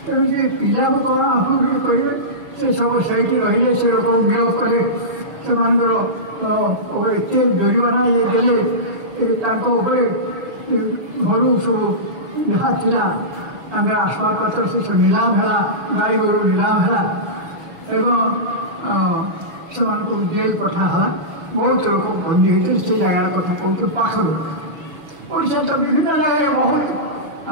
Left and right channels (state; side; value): late; left; 6.5 ms